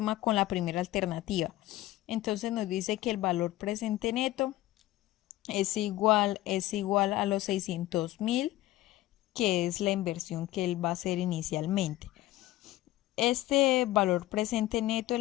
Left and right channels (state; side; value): quieter; right; 15.9 dB